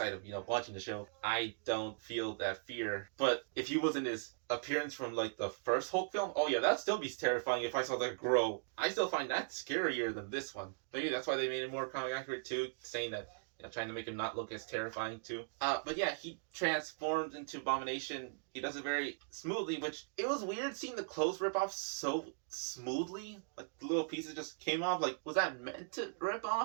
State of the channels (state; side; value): silent; left; digital silence